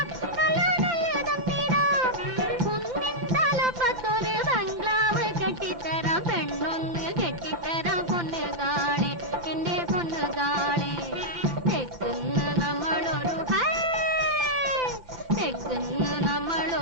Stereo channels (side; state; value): right; late; 2.1 ms